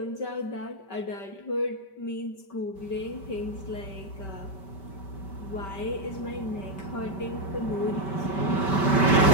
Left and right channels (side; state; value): right; late; 5.2 ms